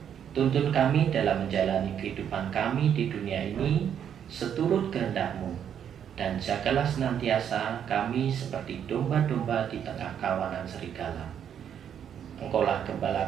Tuntun kami dalam menjalani kehidupan kami di dunia ini seturut kehendak-Mu, dan jagalah senantiasa kami seperti domba-domba di tengah kawanan serigala. Engkaulah gembala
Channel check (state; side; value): quieter; left; 8.8 dB